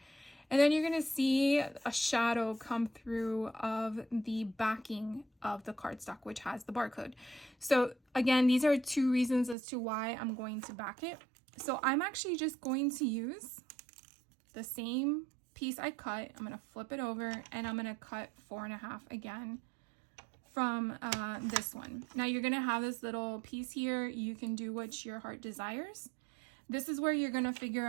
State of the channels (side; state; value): left; drops out; at 9.6 s